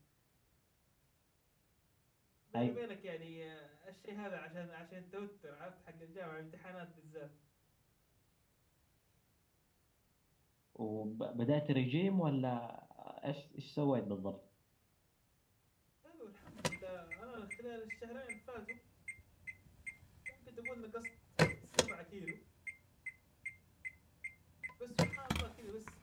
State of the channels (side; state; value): both; identical; correlation 1.00